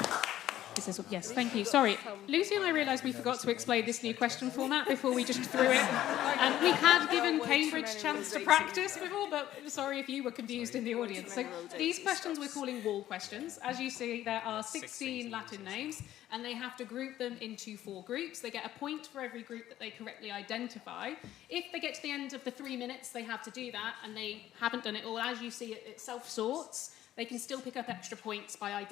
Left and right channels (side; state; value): right; quieter; 13.1 dB